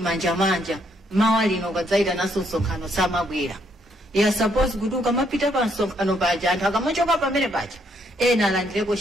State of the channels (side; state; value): both; normal; correlation 0.72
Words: mawa lino kadzaita naso nsonkhano samabwera. Ya suppose kuti ukamapita pa nsonkhano paja anthu akamachoka pamene paja ena alandireko